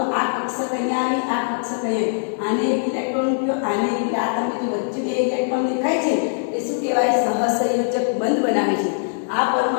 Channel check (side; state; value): right; silent; digital silence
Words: આ કક્ષક અહીંયા આવી, આ કક્ષક અહીંયા, આને એક ઇલેક્ટ્રોન મૂક્યો, આને આ તમે જો વચ્ચે બે ઇલેક્ટ્રોન દેખાય છે, એ શું કહેવાય? સહસંયોજક બંધ બનાવે છે. આ